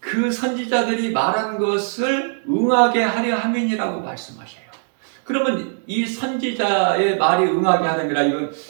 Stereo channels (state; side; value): silent; left; 57 dB below the other